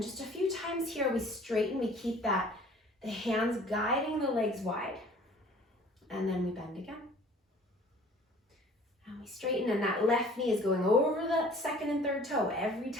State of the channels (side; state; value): both; normal; correlation 0.51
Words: just a few times here, we straighten, we keep the hands guiding the legs wide. And then we bend again. And we straighten, and that left knee is going over the second and third toe every